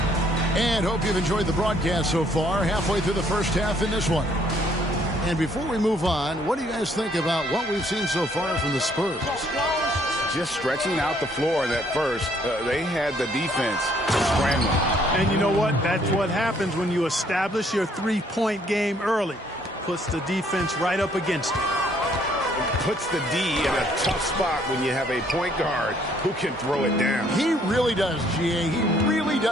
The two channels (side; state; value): both; normal; correlation 0.65